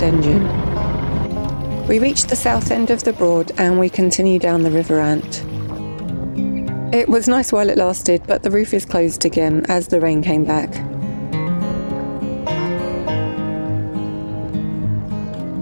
engine. We reached the south end of the Broad and we continue down the River Ant. It was nice while it lasted, but the roof is closed again as the rain came back.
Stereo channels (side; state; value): both; inverted; correlation -1.00